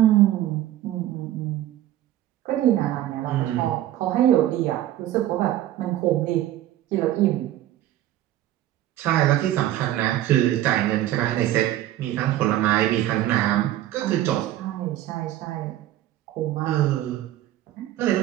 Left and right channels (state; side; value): quieter; left; 13.4 dB